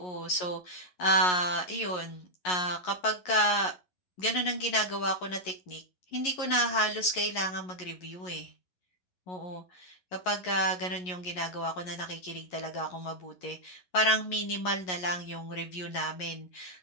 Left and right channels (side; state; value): right; late; 11 ms